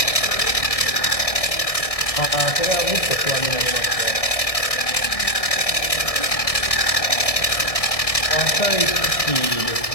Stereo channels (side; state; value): right; late; 1.6 ms